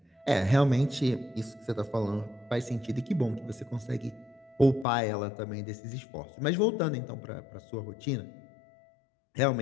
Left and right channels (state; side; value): drops out; right; at 4.9 s